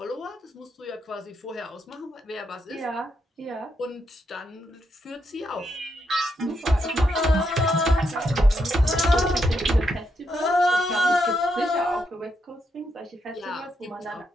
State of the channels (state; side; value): normal; both; correlation 0.80